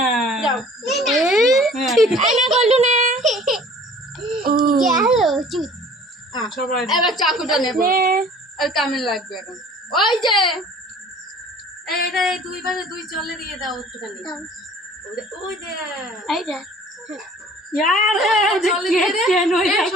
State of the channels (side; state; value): both; normal; correlation 0.50